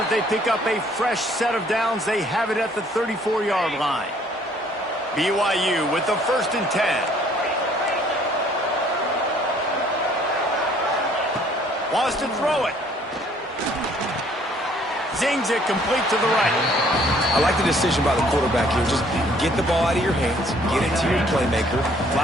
they pick up a fresh set of downs. They have it at the 34-yard line. BYU with the 1st and 10. Wants to throw it. Zings it complete to the right. I like the decision by the quarterback here. Just get the ball out of your hands, get it to your playmaker. A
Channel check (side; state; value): both; normal; correlation 0.60